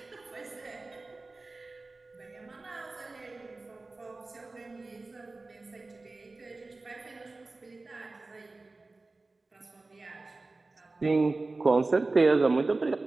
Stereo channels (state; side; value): quieter; left; 3.4 dB